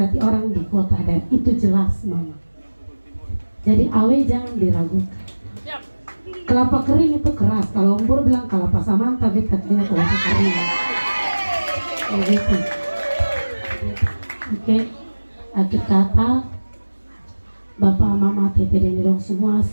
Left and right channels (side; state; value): both; inverted; correlation -1.00